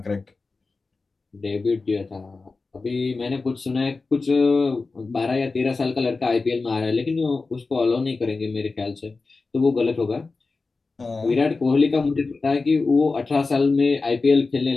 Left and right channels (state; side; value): quieter; right; 3.9 dB